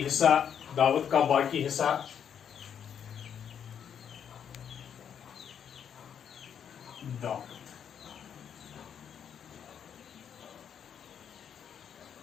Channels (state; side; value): quieter; right; 8.3 dB